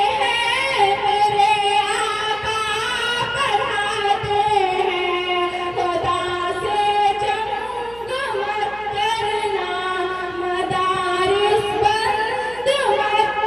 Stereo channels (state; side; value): noise; right; hum, 22 dB below the sound